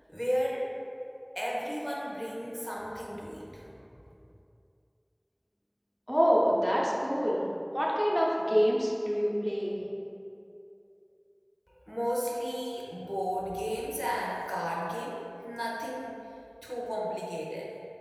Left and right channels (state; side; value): identical; both; correlation 1.00